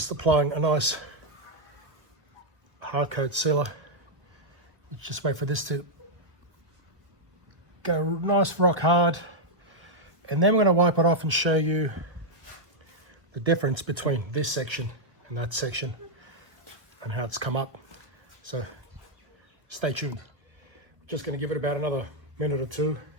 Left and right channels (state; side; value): late; left; 1.5 ms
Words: applying a nice hard coat sealer. Just wait for this to go nice rock hard, and then we're going to wipe it off and show you the difference between this section and that section and how it's come up. So stay tuned. Just going to give it about another minute or two.